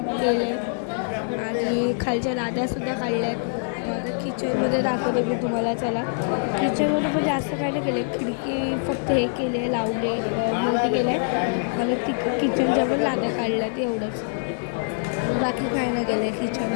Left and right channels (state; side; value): silent; right; digital silence